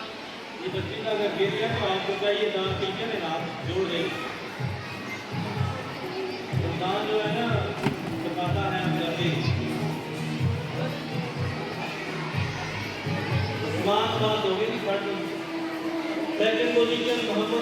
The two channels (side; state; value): both; identical; correlation 1.00